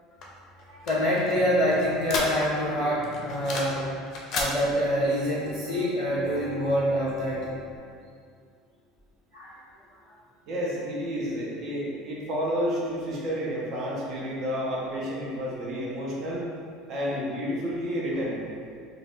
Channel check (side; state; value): both; normal; correlation 0.48